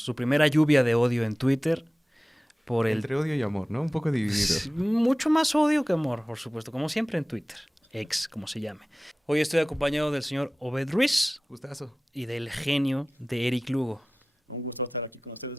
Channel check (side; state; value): both; normal; correlation 0.97